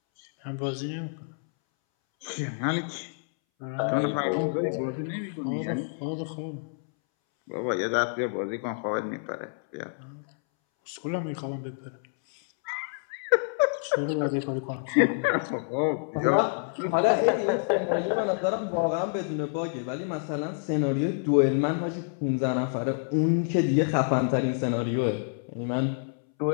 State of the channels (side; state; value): right; silent; 59 dB below the other